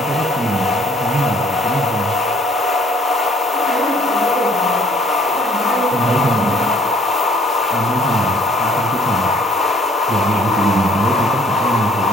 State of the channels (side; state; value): both; normal; correlation 0.60